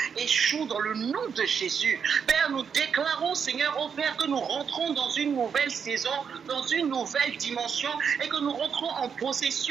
échouent dans le nom de Jésus. Père, nous déclarons, Seigneur, ô Père, que nous rentrons dans une nouvelle saison, dans une nouvelle dimension et que nous nous rentrons en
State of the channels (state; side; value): quieter; left; 6.8 dB